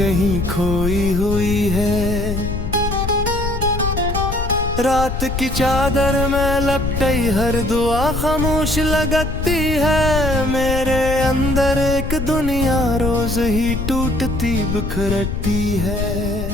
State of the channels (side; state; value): left; noise; rumble, 4 dB below the sound